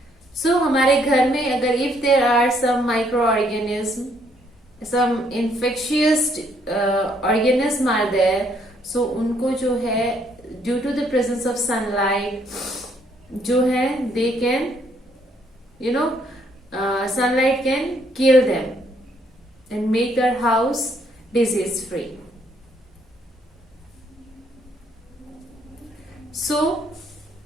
सो हमारे घर में अगर if there are some micro organism, some infectious organism are there, so उनको जो है due to the presence of sunlight जो है they can you know sunlight can kill them and make our house disease free. So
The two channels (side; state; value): both; normal; correlation 0.69